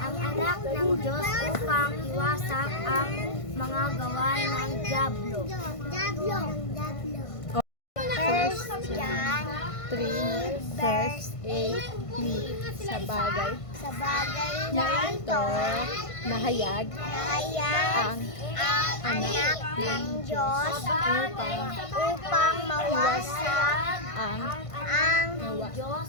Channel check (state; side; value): late; right; 1.5 ms